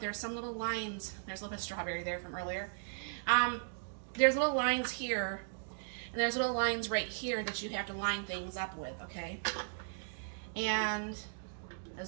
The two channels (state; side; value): silent; left; digital silence